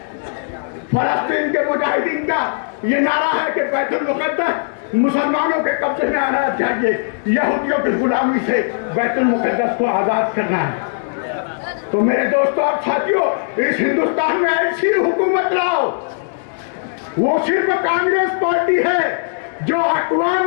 फलस्तीन के मुजाहिदीन का ये नारा है कि बैतुल मुक़द्दस मुसलमानों के कब्जे में आना चाहिए, यहूदियों की गुलामी से बैतुल मुक़द्दस को आजाद करना है। तो मेरे दोस्तों और साथियों, इस हिंदुस्तान में ऐसी हुकूमत लाओ, वो सिर्फ कांग्रेस पार्टी है जो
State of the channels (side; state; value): right; silent; digital silence